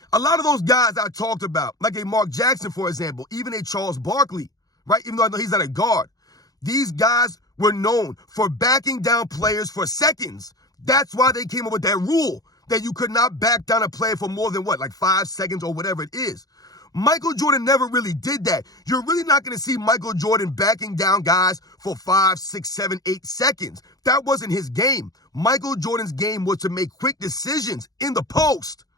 A lot of those guys I talked about, like a Mark Jackson, for example, even a Charles Barkley, right? Even though I know he's not a guard. These guys were known for backing down players for seconds. That's why they came up with that rule that you could not back down a player for more than 5 seconds or whatever it is. Michael Jordan never really did that. You're really not going to see Michael Jordan backing down guys for 5, 6, 7, 8 seconds. That wasn't his game. Michael Jordan's game was to make quick decisions in the post.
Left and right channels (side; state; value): right; late; 0.18 ms